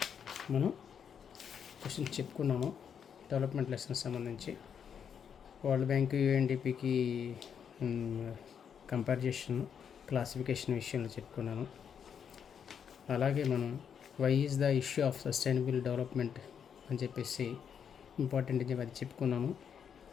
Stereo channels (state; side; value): quieter; right; 7.6 dB